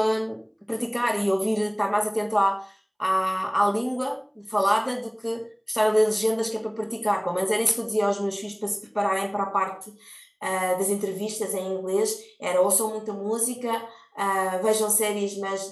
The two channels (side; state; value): both; identical; correlation 1.00